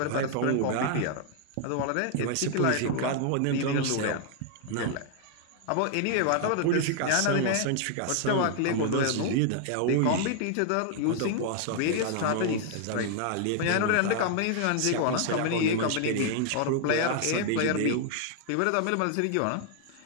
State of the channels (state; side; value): different; both; correlation 0.00